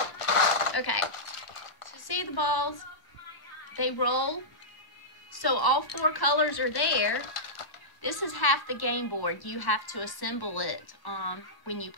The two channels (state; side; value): late; right; 1.0 ms